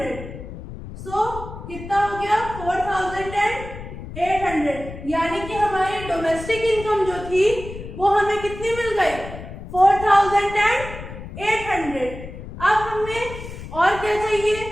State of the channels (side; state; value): left; noise; rumble, 12 dB below the sound